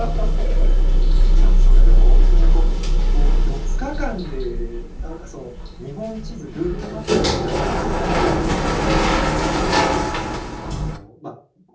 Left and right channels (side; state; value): both; identical; correlation 1.00